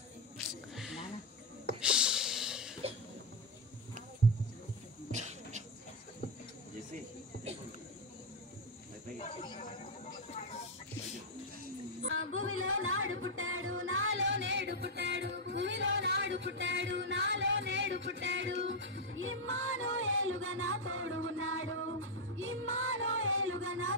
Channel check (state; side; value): normal; both; correlation 0.02